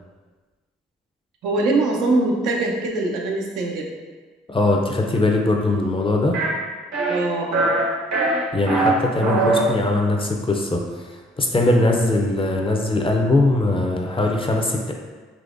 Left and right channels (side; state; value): both; normal; correlation 0.62